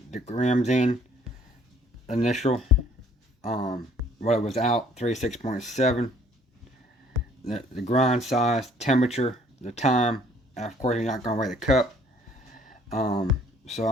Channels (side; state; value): both; normal; correlation 0.59